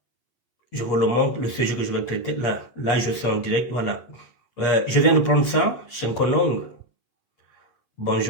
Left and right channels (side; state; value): right; late; 8.4 ms